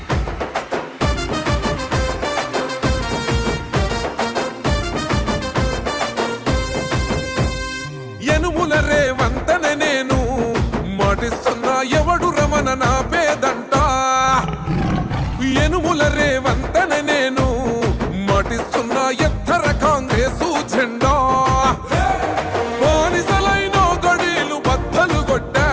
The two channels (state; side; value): identical; both; correlation 1.00